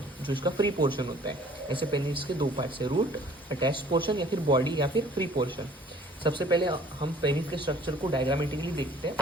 जो इसका फ्री पोर्शन होता है। ऐसे पेनिस के दो पार्ट्स है, रूट, अटैच्ड पोर्शन या फिर बॉडी या फिर फ्री पोर्शन। सबसे पहले हम पेनिस के स्ट्रक्चर को डायग्रामेटिकली देखते हैं,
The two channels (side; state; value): both; normal; correlation 0.54